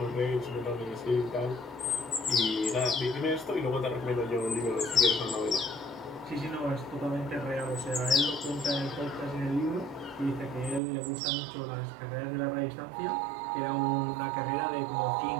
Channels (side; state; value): left; drops out; at 10.8 s